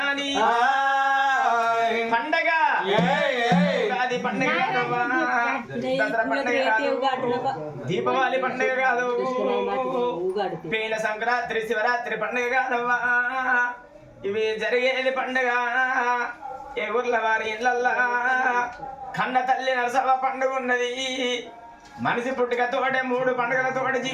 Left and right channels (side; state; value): both; identical; correlation 1.00